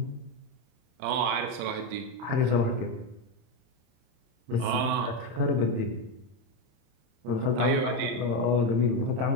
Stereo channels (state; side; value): late; left; 31 ms